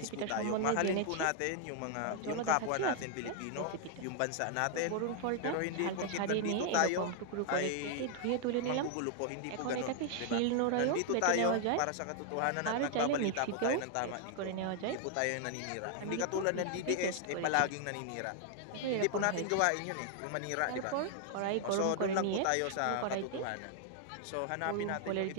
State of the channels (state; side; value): different; both; correlation 0.00